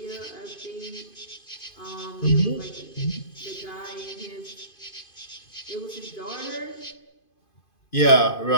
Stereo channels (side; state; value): right; late; 2.5 ms